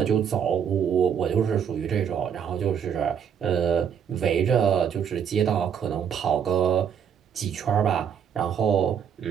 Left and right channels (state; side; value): quieter; left; 8.0 dB